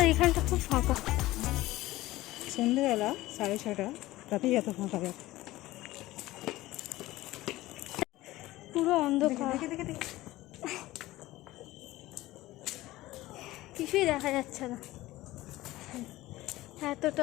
এখানটা খুব ফাঁকা। সন্ধ্যেবেলা 6:30, রাতেই এত ফাঁকা যায়। পুরো অন্ধকার, দেখে দেখে দেখে কিছুই দেখা যাচ্ছে না,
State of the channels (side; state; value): right; quieter; 17.4 dB